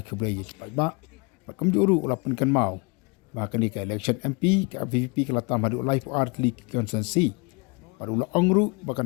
kuble yik pai ba. Bakam juru ulapan kan mau. Bahkan ni ke election MP ke VVP ke latam hadu live art league consensi. Baru la ongru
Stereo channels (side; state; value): right; quieter; 30.3 dB